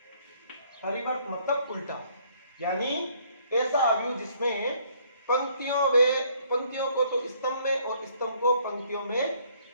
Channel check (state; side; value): inverted; both; correlation -0.64